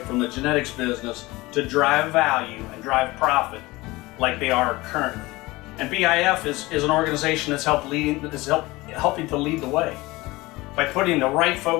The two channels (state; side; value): quieter; right; 21.0 dB